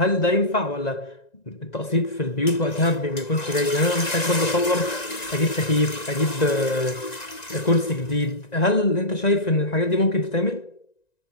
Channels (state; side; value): late; right; 1.9 ms